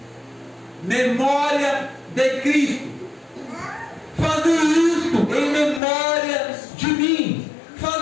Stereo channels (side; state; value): right; drops out; at 5.8 s